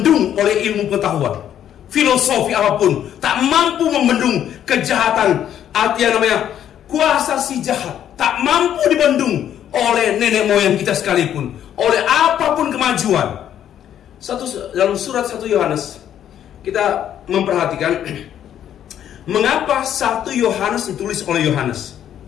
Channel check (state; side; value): quieter; right; 10.3 dB